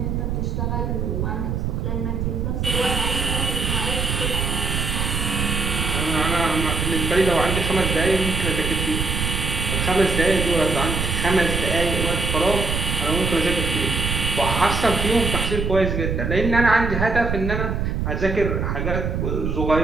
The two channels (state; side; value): noise; right; rumble, 1 dB below the sound